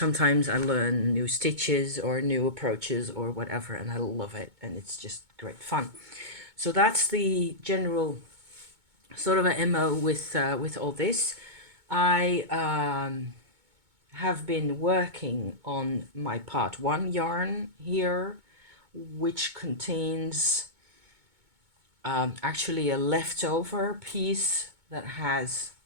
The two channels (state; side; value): late; left; 2.2 ms